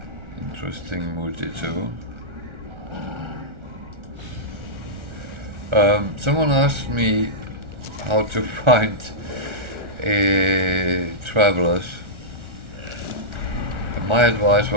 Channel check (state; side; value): late; left; 1.4 ms